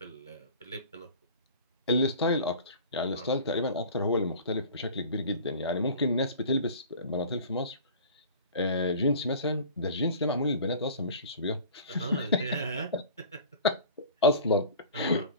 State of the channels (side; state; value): both; inverted; correlation -0.42